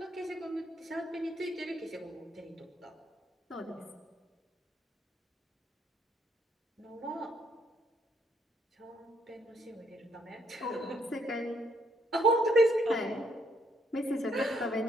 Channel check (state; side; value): normal; both; correlation 0.71